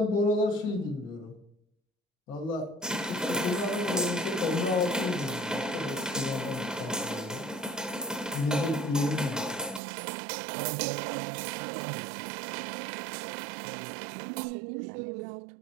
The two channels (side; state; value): left; drops out; at 9.8 s